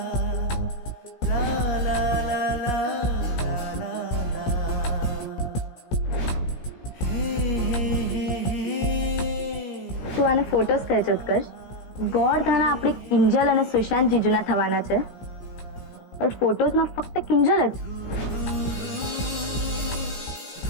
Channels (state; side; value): late; right; 17 ms